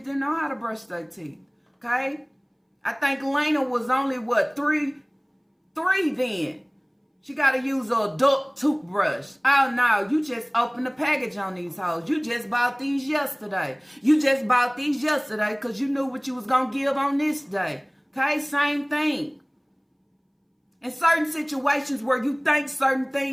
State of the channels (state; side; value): identical; both; correlation 1.00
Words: didn't know how to brush their teeth. Okay? I think Lena was only three then. She gotta use an adult toothbrush. Oh no, you just opened the package on these hoes. You just bought these yesterday. You just bought these yesterday because you knew what you was gonna give on this day. Okay, same thing. In certain situations where you think certain